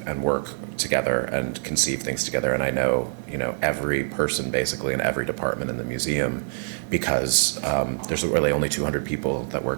and work together and conceive things together. And I know, every person basically in every department in the museum because there's really only 200 people that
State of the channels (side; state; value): left; silent; digital silence